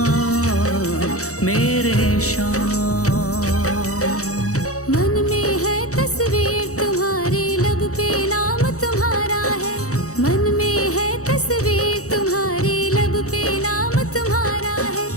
मेरे श्याम। मन में है तस्वीर तुम्हारी, लब पे नाम तुम्हारा है। मन में है तस्वीर तुम्हारी, लब पे नाम तुम्हारा है।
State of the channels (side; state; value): right; late; 0.65 ms